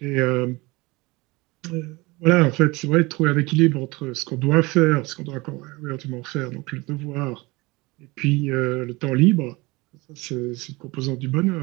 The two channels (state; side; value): quieter; left; 23.4 dB